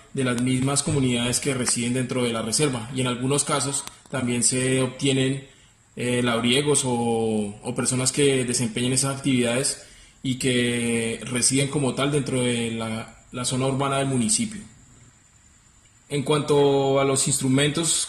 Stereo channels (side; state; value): both; identical; correlation 1.00